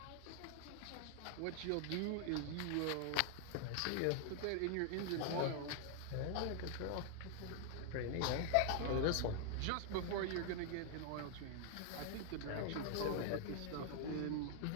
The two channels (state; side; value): different; both; correlation 0.00